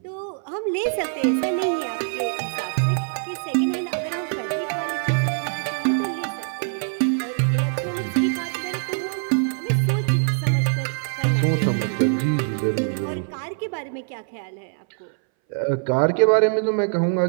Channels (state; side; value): silent; left; 62 dB below the other